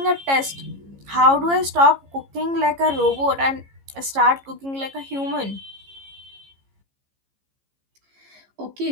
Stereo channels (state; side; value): late; left; 15 ms